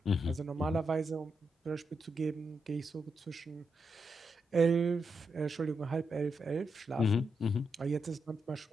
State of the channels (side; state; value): both; normal; correlation 0.83